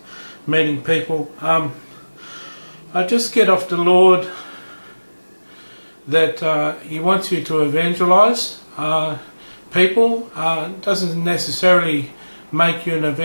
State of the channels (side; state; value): both; inverted; correlation -1.00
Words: meeting people. I just get off the Lord that He wants you to evangelise people. Doesn't necessarily make you an